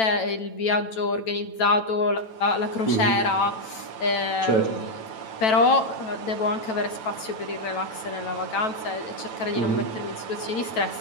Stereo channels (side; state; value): right; late; 9.1 ms